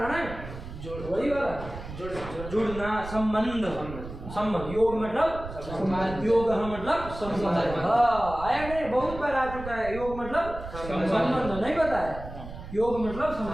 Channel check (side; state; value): right; noise; rumble, 11 dB below the sound